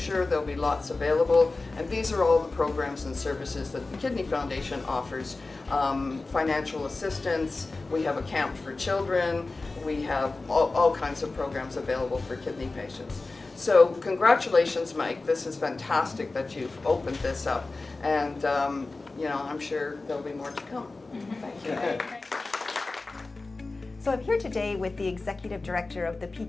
There'll be lots available, and these are all the programs and services that the Kidney Foundation offers. Financial assistance, we have a camp for children, we have all kinds of programs available for kidney patients. So congratulations, Mike. This is fantastic that you've opened this up, and I'm sure there'll be more to come. Thank you. So I'm here today with the Executive Director of the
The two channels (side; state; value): right; quieter; 3.4 dB